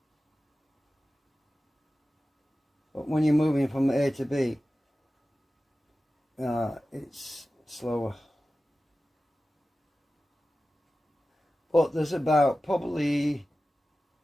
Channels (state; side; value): normal; both; correlation 0.95